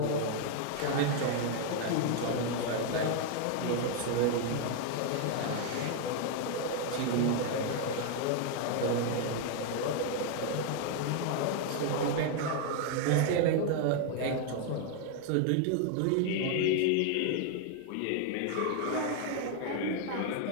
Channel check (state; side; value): different; both; correlation 0.00